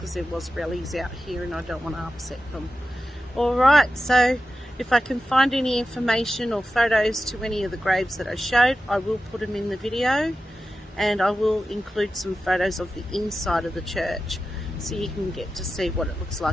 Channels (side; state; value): both; normal; correlation 0.92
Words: there was rallies out here and I don't want to upset them. Alright, so if I can find any information or photos to any of the graves that I showed, I will put them in the video. And I will include some photos of the inside of the church so you can get to see what it looks